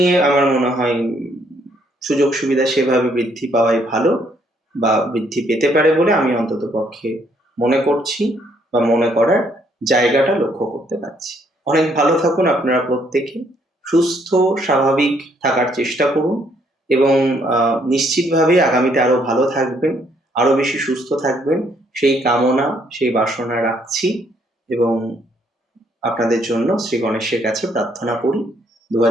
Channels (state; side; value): normal; both; correlation 0.69